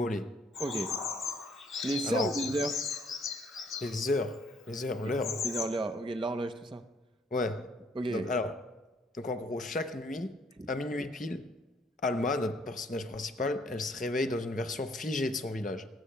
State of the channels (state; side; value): normal; both; correlation 0.64